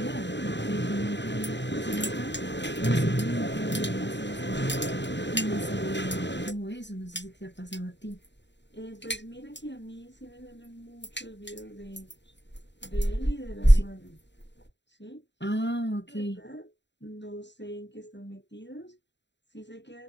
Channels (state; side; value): late; right; 0.52 ms